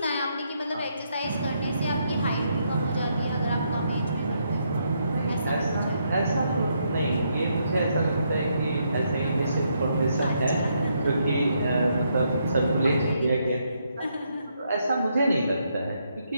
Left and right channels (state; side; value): inverted; both; correlation -0.77